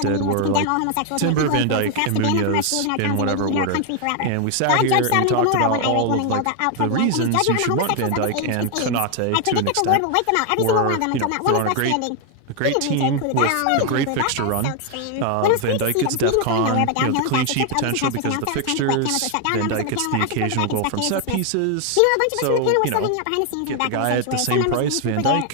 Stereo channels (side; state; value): both; different; correlation 0.00